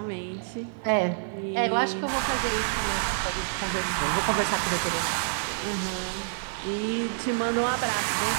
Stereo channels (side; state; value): left; silent; digital silence